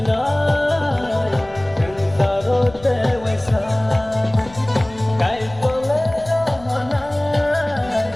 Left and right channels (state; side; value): noise; left; rumble, 20 dB below the sound